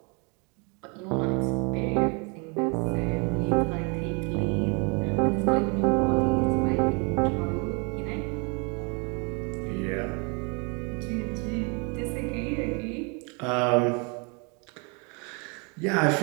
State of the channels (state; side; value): quieter; left; 32.9 dB